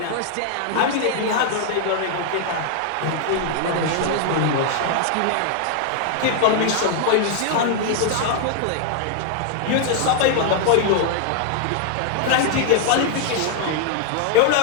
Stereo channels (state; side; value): different; both; correlation 0.00